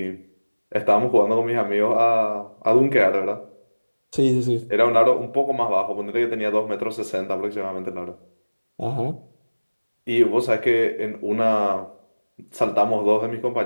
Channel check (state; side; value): inverted; both; correlation -1.00